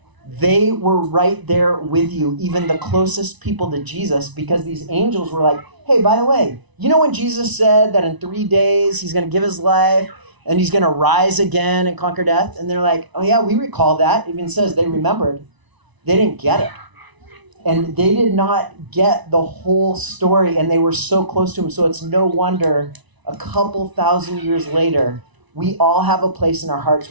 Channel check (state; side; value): late; left; 1.0 ms